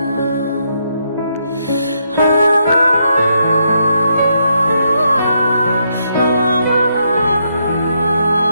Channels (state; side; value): inverted; both; correlation -0.78